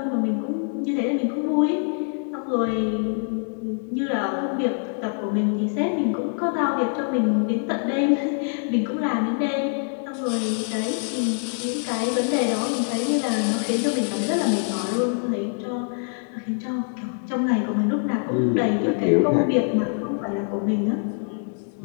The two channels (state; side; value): silent; right; 58 dB below the other